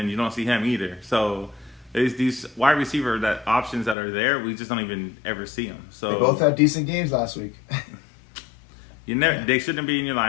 you don't see him either. So there's these wide receiver options that are there. We just don't even ever see them. So they both had decent games last week. They shouldn't be in your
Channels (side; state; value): right; drops out; at 4.0 s